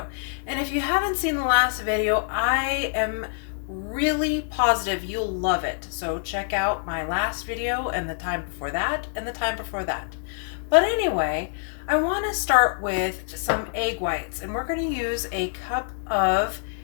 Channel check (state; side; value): silent; right; 61 dB below the other